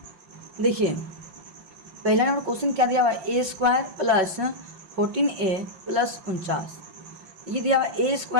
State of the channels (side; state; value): left; late; 5.3 ms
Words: देखिए पहला नंबर क्वेश्चन क्या दिया हुआ है, a² प्लस 14a प्लस 49। ये दिया हुआ ए